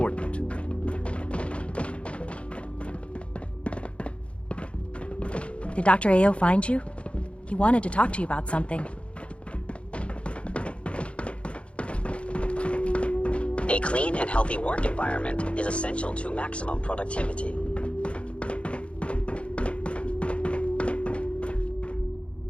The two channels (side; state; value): right; late; 0.060 ms